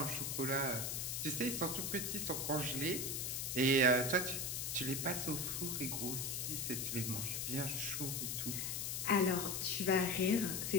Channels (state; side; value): noise; left; hiss, 2 dB below the sound